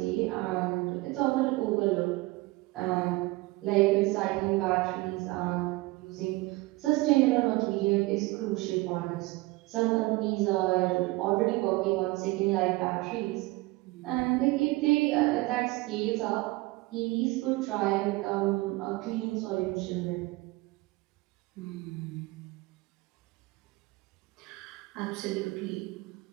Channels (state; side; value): quieter; left; 21.8 dB